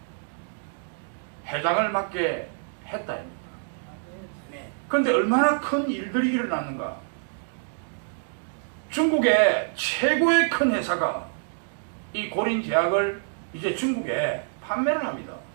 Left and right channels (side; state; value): left; silent; digital silence